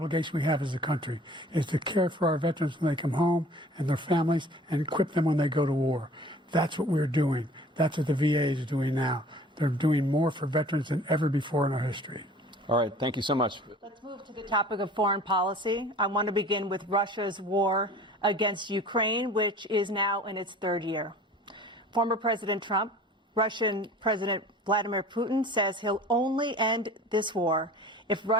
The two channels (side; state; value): both; normal; correlation 0.46